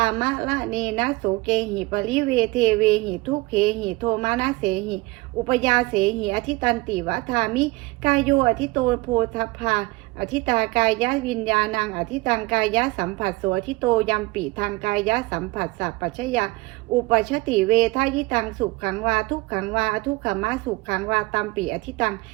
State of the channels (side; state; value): left; quieter; 22.6 dB